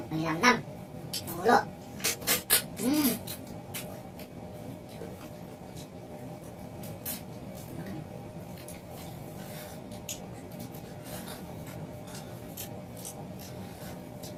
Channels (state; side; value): identical; both; correlation 1.00